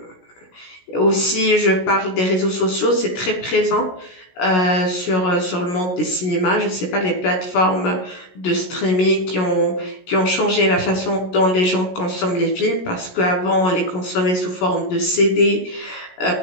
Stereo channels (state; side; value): late; right; 16 ms